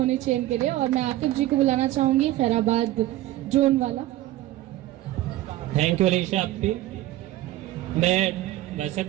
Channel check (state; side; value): quieter; left; 15.6 dB